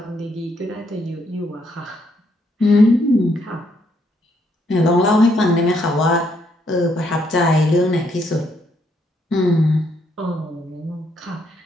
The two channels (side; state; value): both; normal; correlation 0.73